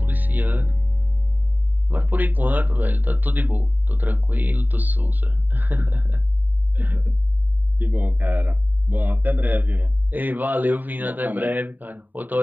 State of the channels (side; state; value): left; late; 0.088 ms